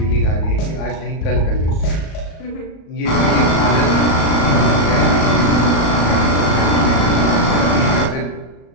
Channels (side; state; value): right; late; 37 ms